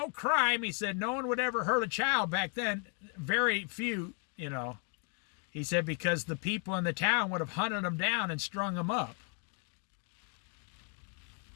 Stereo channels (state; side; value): quieter; right; 38.4 dB